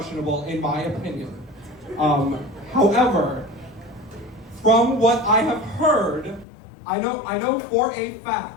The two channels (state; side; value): drops out; right; at 6.5 s